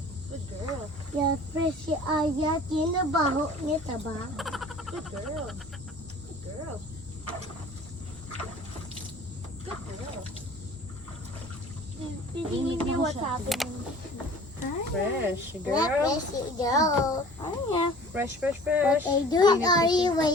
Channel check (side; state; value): both; normal; correlation 0.46